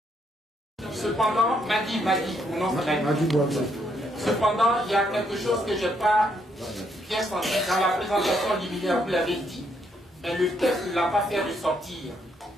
Cependant, cependant, il y a quelque chose que je n'ai pas bien senti dans la présentation liminaire, vous l'avez dit, mais le texte ne l'a pas fait ressortir.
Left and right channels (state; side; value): normal; both; correlation 0.73